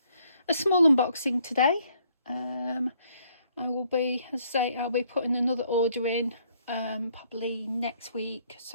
small unboxing today. I will be, as I say, I'll be putting another order in probably next week.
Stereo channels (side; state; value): both; inverted; correlation -0.67